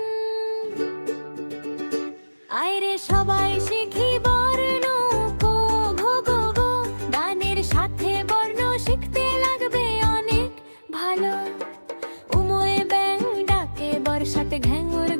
আয়রে সবাই শিখি বর্ণ কো ঘো গো গো, গানের সাথে বর্ণ শিখতে লাগবে অনেক ভালো। উমোয়ে ব্যাং ডাকে, বর্ষাতে ঘ্যাঙুর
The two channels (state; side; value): inverted; both; correlation -1.00